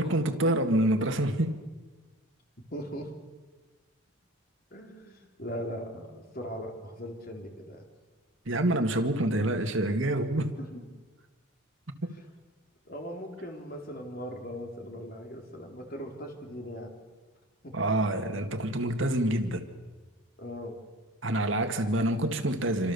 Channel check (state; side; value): normal; both; correlation 0.41